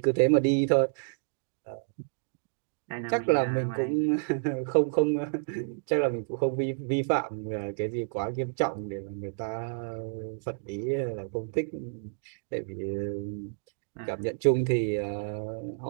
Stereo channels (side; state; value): left; silent; digital silence